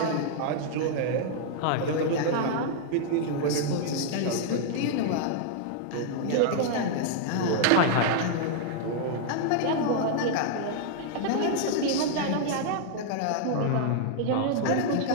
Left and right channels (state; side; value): different; both; correlation -0.01